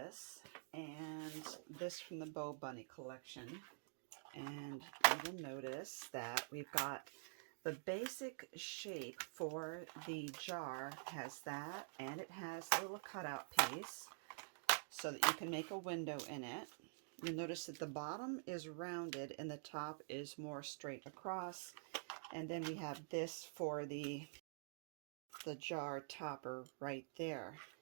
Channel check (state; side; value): silent; left; digital silence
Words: and this from the Bo Bunny collection. And you will notice that we've got the basic shape for the jar has that, and it has a little cutout piece so that you can make a window in it. You'll notice that the bottom is rounded and the top is more straight across. And then we have this for the jar topper right there.